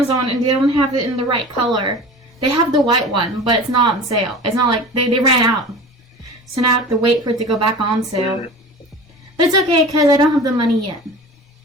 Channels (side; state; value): both; normal; correlation 0.36